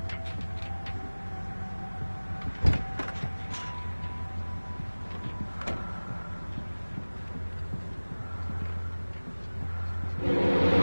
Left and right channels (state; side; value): inverted; both; correlation -1.00